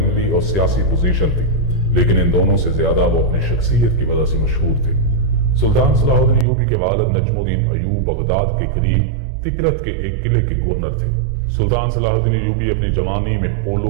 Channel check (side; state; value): left; drops out; at 6.5 s